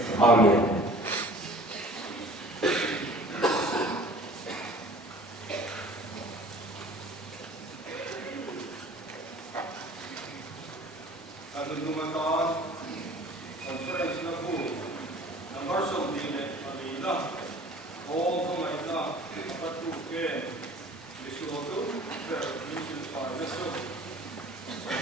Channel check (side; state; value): both; normal; correlation 0.47